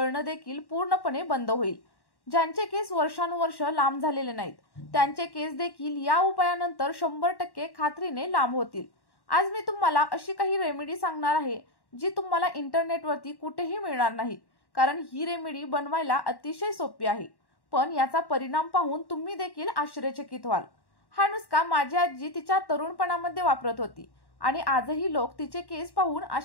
देखील पूर्णपणे बंद होईल. ज्यांचे केस वर्षानुवर्ष लांब झालेले नाहीत, त्यांचे केस देखील या उपायानंतर 100% खात्रीने लांब होतील. आज मी तुम्हाला अशी काही रेमेडी सांगणार आहे जी तुम्हाला इंटरनेटवरती कुठेही मिळणार नाही, कारण ही रेमेडी बनवायला अतिशय सोपी आहे. पण याचा परिणाम पाहून तुम्ही देखील आश्चर्यचकित व्हाल. हा नुसका माझी आजी तिच्या तरुणपणामध्ये वापरत होती आणि आजही लोक तिचे केस पाहून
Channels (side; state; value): right; late; 1.1 ms